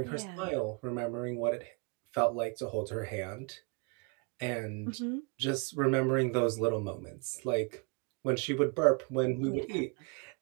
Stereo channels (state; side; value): quieter; left; 32.3 dB